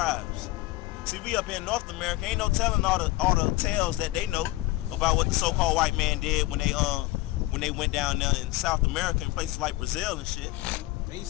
See, we up here in North America, ain't no telling all the tales that they know about what the so-called white man did when they went down there in South America in places like Brazil and shit. They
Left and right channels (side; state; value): right; quieter; 19.0 dB